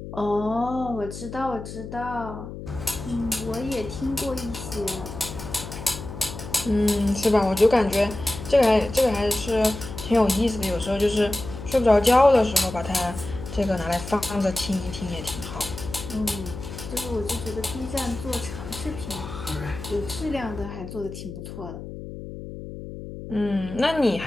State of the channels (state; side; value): noise; left; hum, 10 dB below the sound